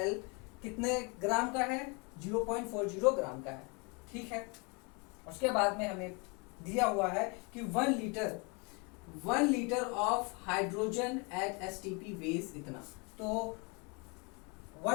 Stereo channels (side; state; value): right; quieter; 30.9 dB